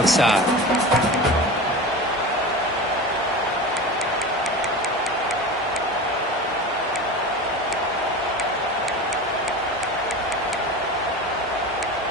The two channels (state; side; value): normal; both; correlation 0.30